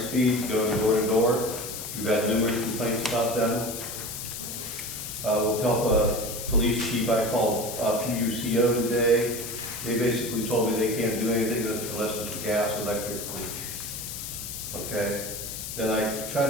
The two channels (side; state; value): left; noise; hiss, 7 dB below the sound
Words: going door to door. We've had numerous complaints about them. With help of police chief, I called PUCO today. They basically told me they can't do anything unless it's gas, electric. Okay. Then I tried